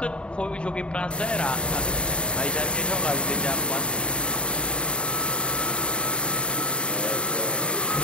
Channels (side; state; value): right; late; 0.055 ms